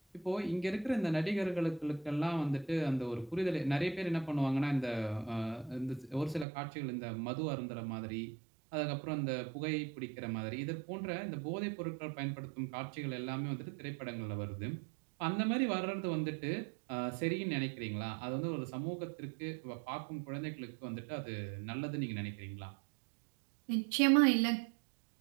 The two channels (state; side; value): drops out; left; at 6.5 s